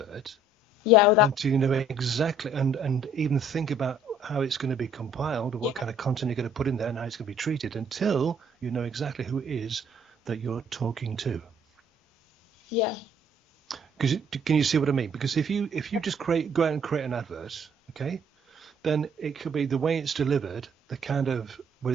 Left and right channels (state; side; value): normal; both; correlation 0.61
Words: until you know exactly and even think about how it's going to be compiled, or what kind of content you're going to put in there, and how it's going to be treated, until you know exactly who it is that you're talking to. Yeah. Because can you see what I mean? Because if you just go out and create an advert, okay, then it could be the way it's delivered, the kind of whether